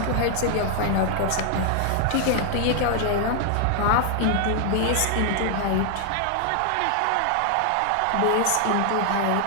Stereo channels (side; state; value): both; different; correlation 0.00